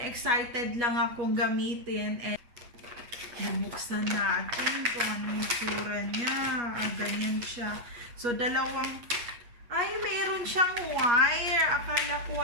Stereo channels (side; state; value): left; late; 8.4 ms